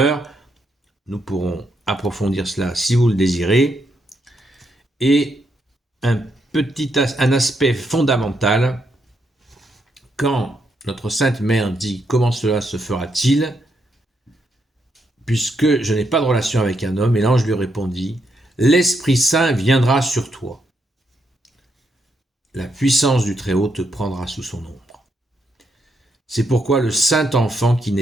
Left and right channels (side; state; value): both; normal; correlation 0.79